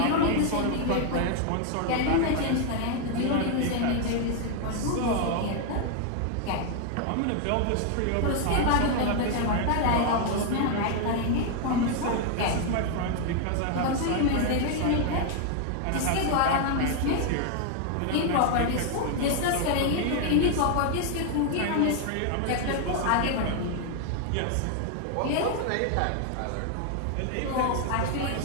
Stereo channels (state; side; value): different; both; correlation 0.00